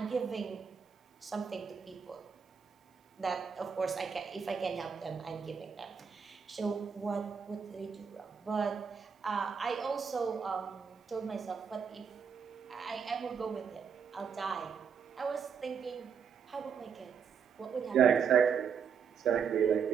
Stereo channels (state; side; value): quieter; left; 6.6 dB